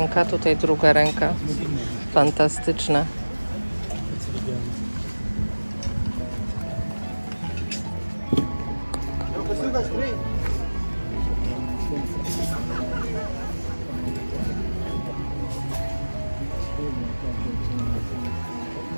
tutaj druga ręka. Fantastyczne.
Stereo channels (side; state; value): both; inverted; correlation -1.00